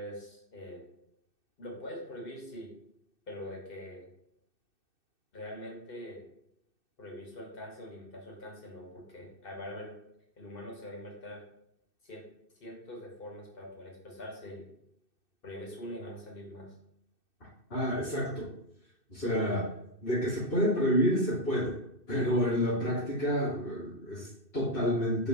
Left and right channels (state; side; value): late; right; 2.6 ms